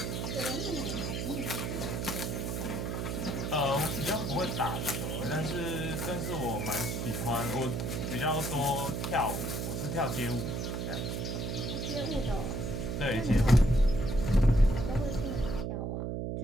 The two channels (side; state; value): right; noise; hum, 2 dB below the sound